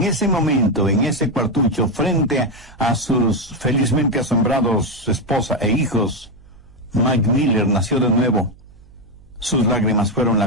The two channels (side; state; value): right; noise; hum, 25 dB below the sound